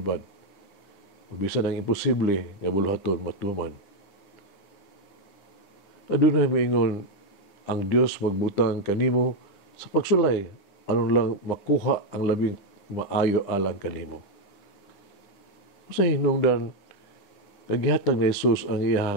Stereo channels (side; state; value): right; late; 9.9 ms